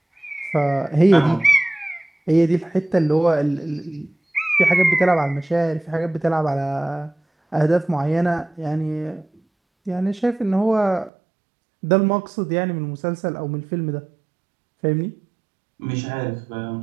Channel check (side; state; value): left; drops out; at 11.1 s